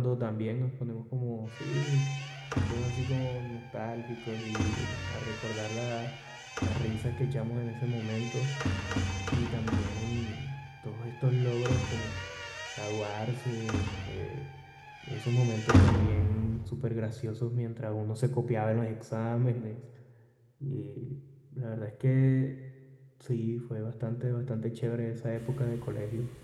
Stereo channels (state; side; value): identical; both; correlation 1.00